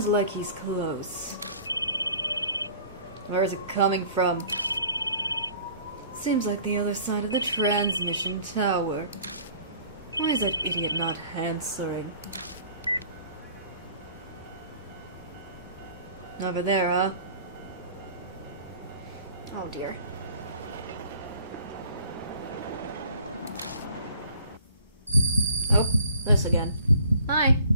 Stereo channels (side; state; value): both; inverted; correlation -0.51